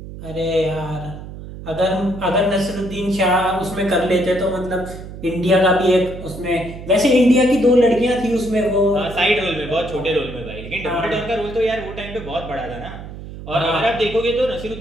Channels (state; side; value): noise; right; hum, 12 dB below the sound